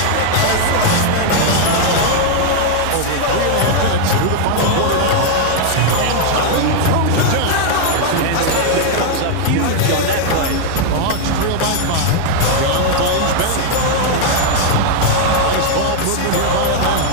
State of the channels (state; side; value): different; both; correlation 0.00